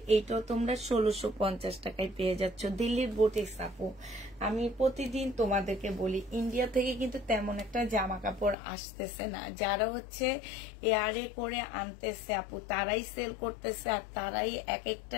এইটাও তোমরা 1650 টাকায় পেয়ে যাচ্ছ। দিল্লির বুটিক্স আপু, আমি প্রতিদিন তোমাদেরকে বলি ইন্ডিয়া থেকে কিন্তু তেমন একটা জামা কাপড় আসতেছে না। যারা হচ্ছে এয়ারে করে আনতেছে আপু তারাই সেল করতেছে, আর তারাই এক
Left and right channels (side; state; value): right; drops out; at 8.6 s